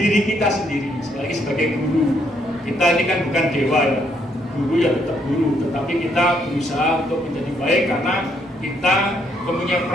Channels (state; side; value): normal; both; correlation 0.72